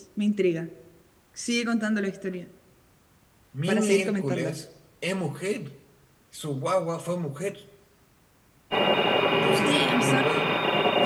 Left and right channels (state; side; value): identical; both; correlation 1.00